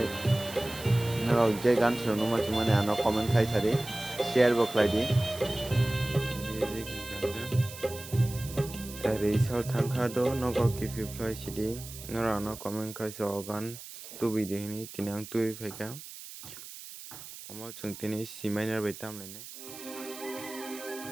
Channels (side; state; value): right; noise; hiss, 13 dB below the sound